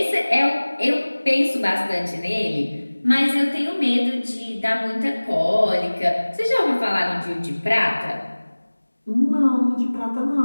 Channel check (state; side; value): inverted; both; correlation -1.00